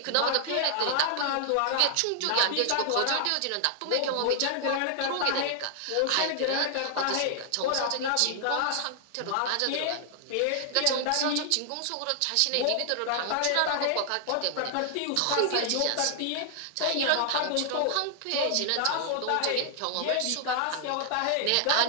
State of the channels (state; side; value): different; both; correlation 0.00